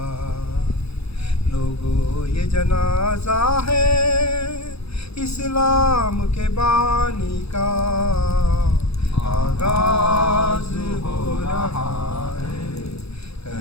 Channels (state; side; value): late; right; 0.78 ms